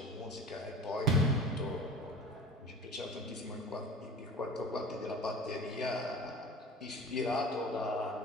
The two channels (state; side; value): normal; both; correlation 0.39